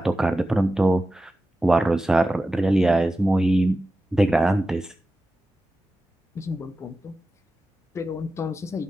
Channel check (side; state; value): both; normal; correlation 0.93